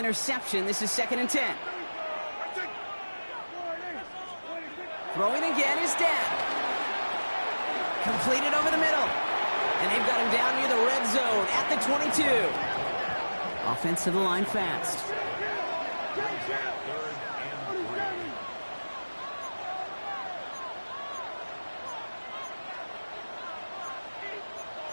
this is 2nd and 10. Throwing again is Dad. Completed over the middle. And they've got him down near the red zone at the 22. Offense to the line fast.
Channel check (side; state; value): both; inverted; correlation -1.00